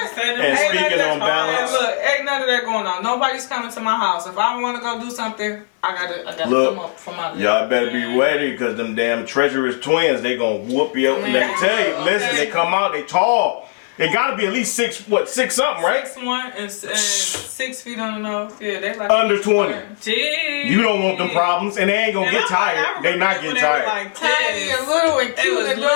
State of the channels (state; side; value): silent; right; 58 dB below the other